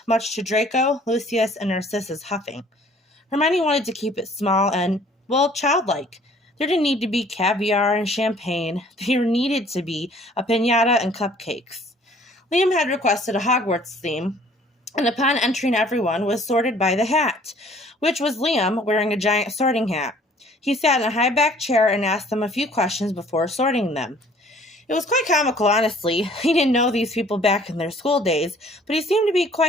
much to Draco, Lucius, and Narcissa's huffing. Hermione wanted to keep it small and, childlike. There didn't need to be caviar and champagne. There needed to be a piñata and cupcakes. Liam had requested a Hogwarts theme, and upon entering everyone was sorted by the hat, which was Liam wearing a giant sorting hat. He sat in a high-backed chair and asked them a few questions before sorting them. It was quite comical, honestly. He didn't know these people back in their school days, but he seemed to be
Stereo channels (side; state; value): both; normal; correlation 0.55